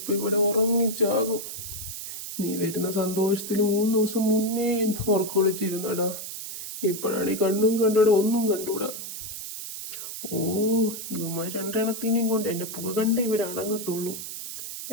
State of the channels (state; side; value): noise; right; hiss, 8 dB below the sound